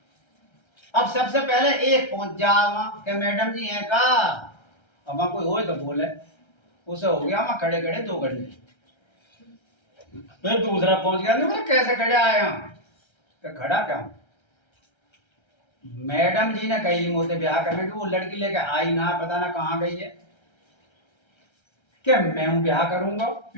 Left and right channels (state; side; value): late; right; 1.3 ms